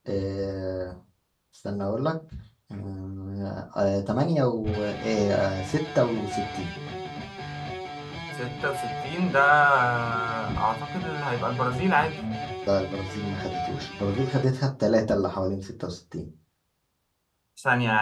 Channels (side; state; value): both; identical; correlation 1.00